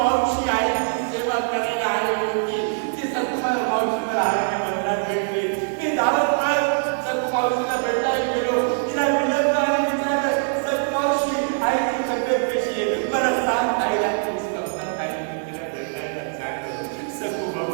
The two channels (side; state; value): left; silent; digital silence